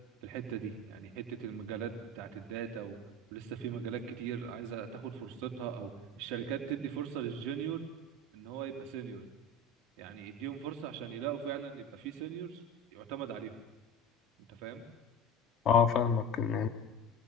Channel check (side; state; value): both; normal; correlation 0.30